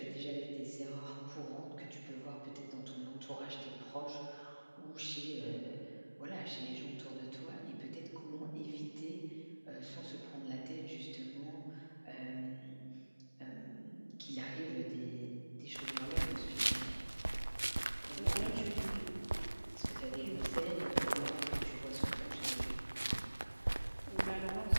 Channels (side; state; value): both; inverted; correlation -1.00